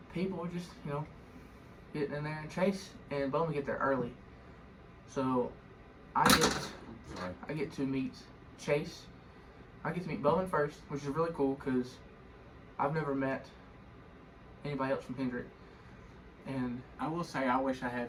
people were just getting in there. And Chase and Bowman get there early, so I get to meet Chase. I get to meet Bowman first, which is really cool because I've never met anybody else from Hendrick. And I will say I wish I had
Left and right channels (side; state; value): both; identical; correlation 1.00